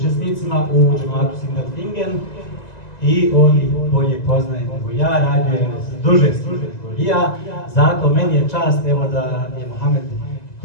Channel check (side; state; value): right; late; 1.9 ms